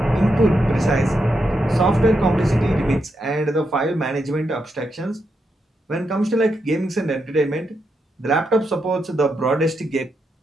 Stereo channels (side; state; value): both; normal; correlation 0.83